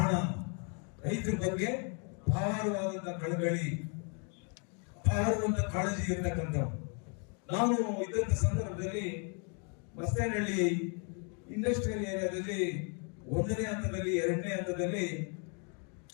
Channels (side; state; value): right; quieter; 38.6 dB